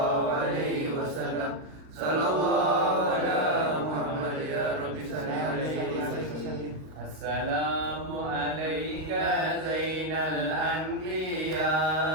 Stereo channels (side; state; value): left; late; 38 ms